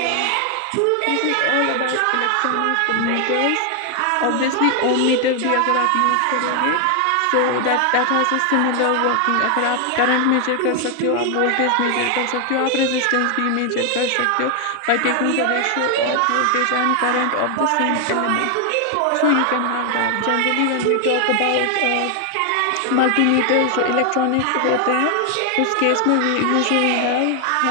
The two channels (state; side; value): different; both; correlation 0.00